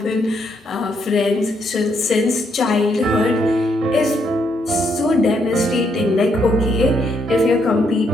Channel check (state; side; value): normal; both; correlation 0.75